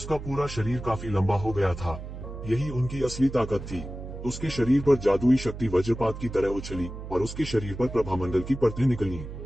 पूरा शरीर काफी लंबा हो गया था। यही उनकी असली ताकत थी। उसके शरीर पर जादुई शक्ति वज्रपात की तरह उछली और उसके शरीर पर प्रभामंडल की परतें निकली।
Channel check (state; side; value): noise; right; hum, 10 dB below the sound